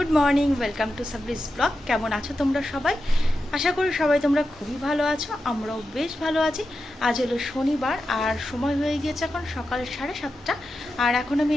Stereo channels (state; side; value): normal; both; correlation 0.90